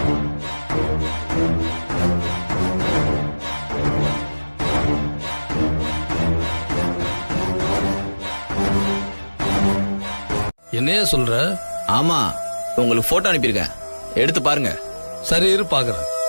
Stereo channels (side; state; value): both; inverted; correlation -1.00